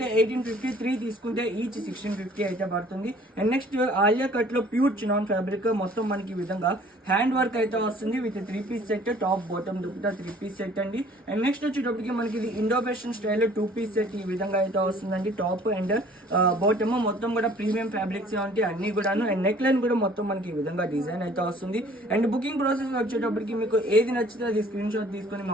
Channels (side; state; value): both; normal; correlation 0.54